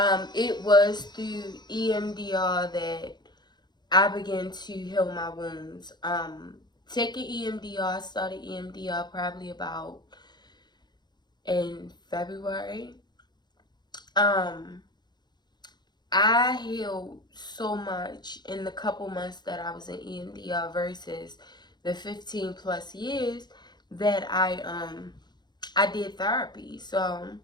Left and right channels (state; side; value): late; right; 0.21 ms